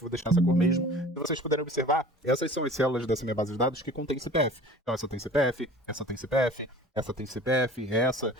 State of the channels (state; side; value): normal; both; correlation 0.43